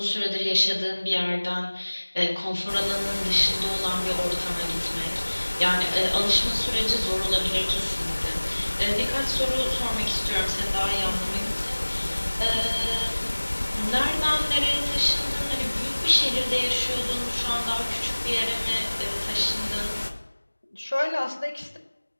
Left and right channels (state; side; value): inverted; both; correlation -1.00